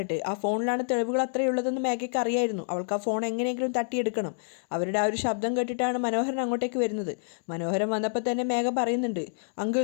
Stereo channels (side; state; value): right; silent; digital silence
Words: ആ ഫോണിലാണ് തെളിവുകൾ അത്രയുള്ളതെന്ന് മേഘയ്ക്ക് അറിയായിരുന്നു. അവൾക്ക് ആ ഫോൺ എങ്ങനെയെങ്കിലും തട്ടിയെടുക്കണം. അവരുടെ ആ ഒരു ശബ്ദം കേട്ടിട്ടാണ് മനോഹരൻ അങ്ങോട്ടേക്ക് വരുന്നത്. മനോഹരൻ വന്നപ്പോൾ തന്നെ മേഘ പറയുന്നുണ്ട്,